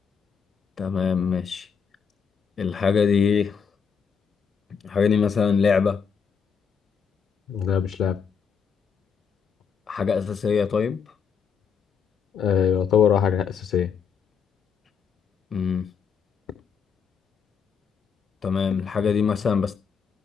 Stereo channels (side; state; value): right; quieter; 6.5 dB